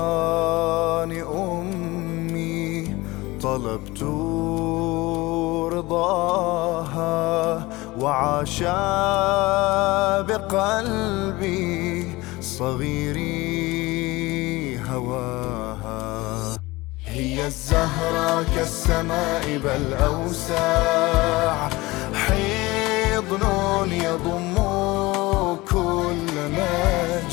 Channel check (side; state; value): right; quieter; 21.1 dB